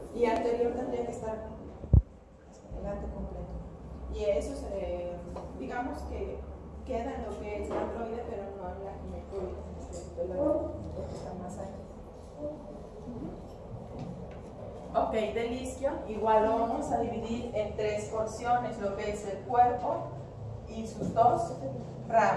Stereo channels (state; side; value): identical; both; correlation 1.00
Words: Y anterior tendría que estar delante completo. Y eso se, digamos que queda en lo que es la androide, pero no en la ginecoide, porque está más allá. Ok, del isquio igual lo vamos a dividir en tres porciones, lo que es el cuerpo y sus dos